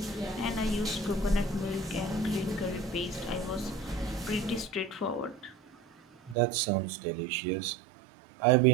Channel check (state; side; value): drops out; left; at 6.4 s